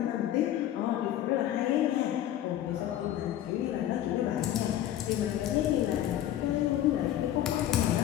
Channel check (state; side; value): quieter; right; 12.1 dB